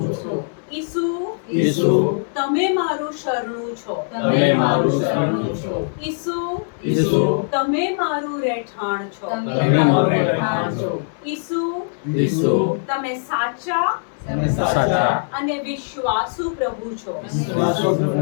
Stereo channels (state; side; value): silent; right; digital silence